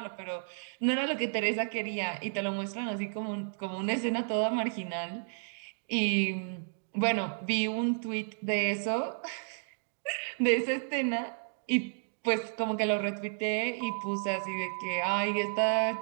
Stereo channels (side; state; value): left; silent; digital silence